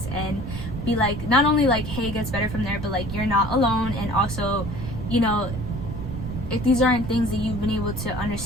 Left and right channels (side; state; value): right; noise; rumble, 8 dB below the sound